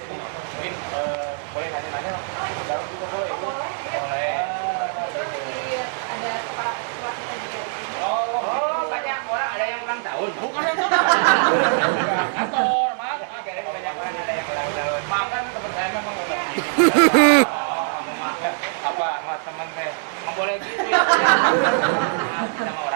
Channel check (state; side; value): silent; left; 61 dB below the other